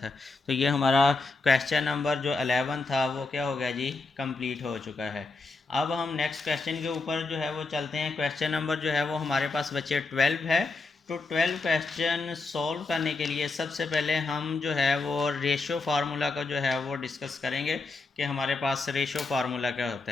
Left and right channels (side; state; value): right; quieter; 3.7 dB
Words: तो ये हमारा क्वेश्चन नंबर जो 11 था वो क्या हो गया जी कंप्लीट हो चुका है। अब हम नेक्स्ट क्वेश्चन के ऊपर जो है वो चलते हैं। क्वेश्चन नंबर जो है वो हमारे पास बच्चे 12 है। तो 12 क्वेश्चन सॉल्व करने के लिए सबसे पहले हम जो है वो रेशो फार्मूला का जो है वो डिस्कस करेंगे कि हमारे पास रेशो फार्मूला क्या होता